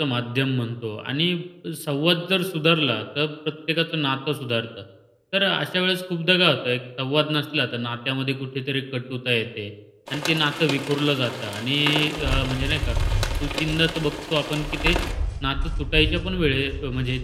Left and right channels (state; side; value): identical; both; correlation 1.00